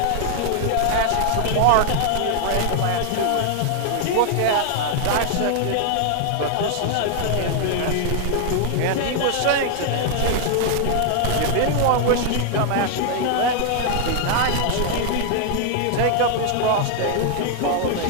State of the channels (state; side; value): different; both; correlation 0.00